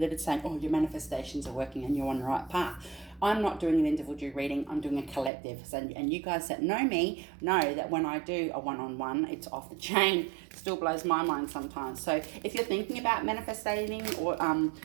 It's saying, oh, your manifestations are working and you're on the right path. I'm not doing an individual reading, I'm doing a collective. So, and you guys that know me know that when I do a one-on-one, it's off the chain. It still blows my mind sometimes. So if you're thinking about manifesting or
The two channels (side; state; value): left; drops out; at 5.3 s